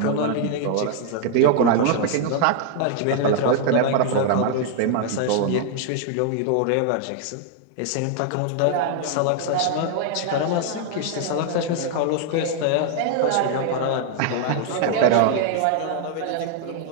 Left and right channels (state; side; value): different; both; correlation 0.00